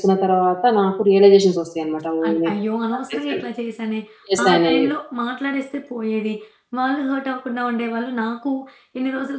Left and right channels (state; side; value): identical; both; correlation 1.00